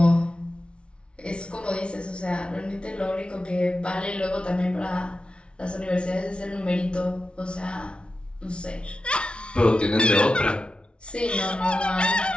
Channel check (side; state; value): right; late; 0.058 ms